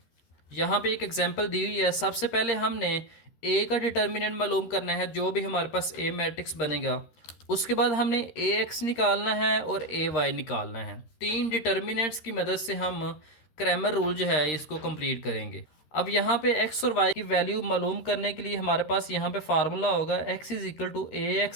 यहाँ पे एक एग्जांपल दी हुई है। सबसे पहले हमने ए का डिटर्मिनेंट मालूम करना है, जो भी हमारे पास ए मैट्रिक्स बनेगा। उसके बाद हमने ए एक्स निकालना है और ए वाई निकालना है। तीन डिटर्मिनेंट्स की मदद से हम क्रैमर रूल जो है इसको कंप्लीट करेंगे। अब यहाँ पे एक्स और वाई की वैल्यू मालूम करने के लिए हमारे पास यहाँ पे फार्मूला होगा x is equal to a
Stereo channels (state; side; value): late; right; 13 ms